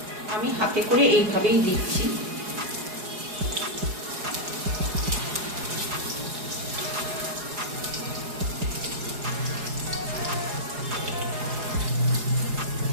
আমি হাতে করে এইভাবেই দিচ্ছি।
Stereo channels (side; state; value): left; late; 4.8 ms